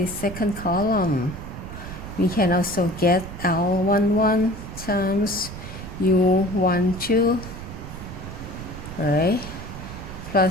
second column? We can also get L11 times U12, right?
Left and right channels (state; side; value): noise; right; rumble, 11 dB below the sound